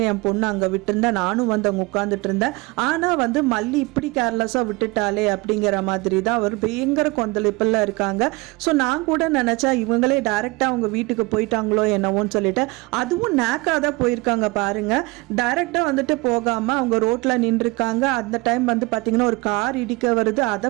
என் பொண்ணு அங்கே விட்டுருந்தேன், நானும் வந்து அவங்க உட்கார்ந்துட்டு இருந்தேன். ஆனா வந்து மல்லி இப்படி கேர்லெஸ்ஸா விட்டுட்டாலே அப்படிங்கிற மாதிரி தான் அவர் பயங்கர கொந்தளிப்புல இருக்காங்க. ஸோ நான் கூட நினைச்சா இவங்களே டைரக்டா அவங்க வீட்டுக்கு போயிட்டாங்களோ என்னவோன்னு சொல்லிட்டு, அதுவும் நேக்காதான் போயிருக்காங்க பாருங்க. டைரக்டா வந்துட்டு போகாம அவங்க ரோட்ல நின்றுருக்காங்க. அந்த டைம் வந்து பாத்தீங்கன்னா ஒரு கார் இடிக்க வருது.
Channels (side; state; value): left; quieter; 24.1 dB